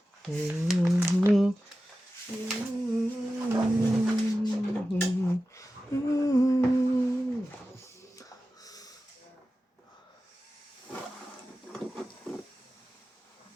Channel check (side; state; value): both; normal; correlation 0.94